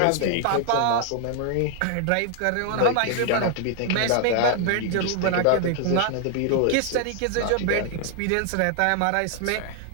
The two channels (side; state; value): both; different; correlation 0.00